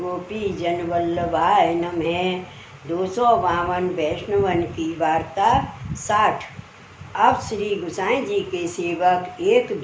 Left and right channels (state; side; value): identical; both; correlation 1.00